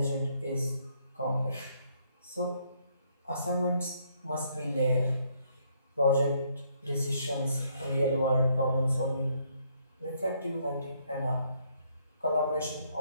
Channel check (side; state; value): both; inverted; correlation -0.70